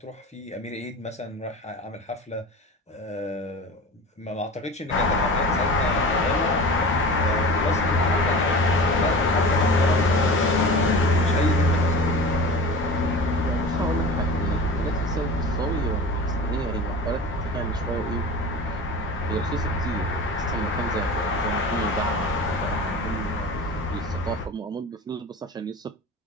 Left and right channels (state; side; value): normal; both; correlation 0.34